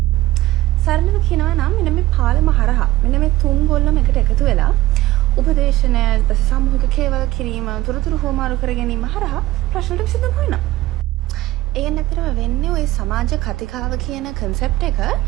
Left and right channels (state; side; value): quieter; left; 17.0 dB